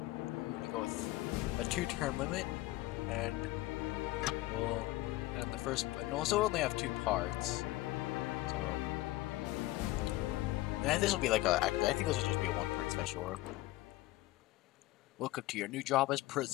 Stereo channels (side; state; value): right; quieter; 18.0 dB